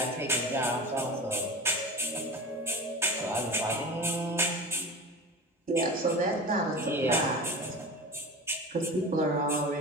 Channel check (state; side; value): normal; both; correlation 0.32